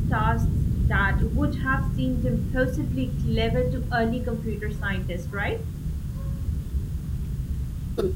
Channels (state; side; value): identical; both; correlation 1.00